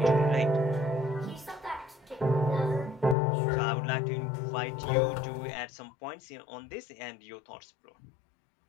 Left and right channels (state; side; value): drops out; right; at 3.2 s